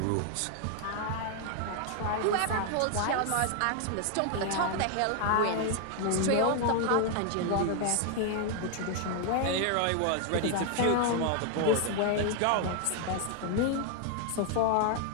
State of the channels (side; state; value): both; different; correlation 0.00